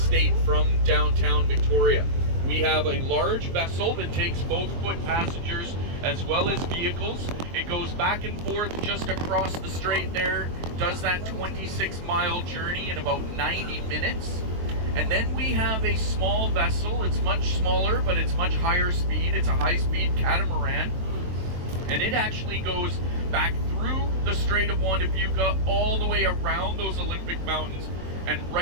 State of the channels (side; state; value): left; late; 23 ms